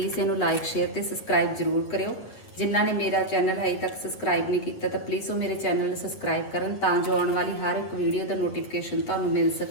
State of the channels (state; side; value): late; right; 8.5 ms